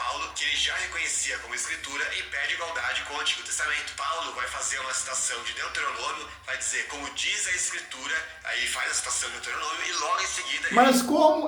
que ele já reconhecia como escritura e pede igualdade com o Antigo Testamento. Paulo vai fazer uma citação de Deuteronômio, vai dizer, como diz a escritura, aí faz a citação de Deuteronômio e logo em seguida... Mas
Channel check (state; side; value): identical; both; correlation 1.00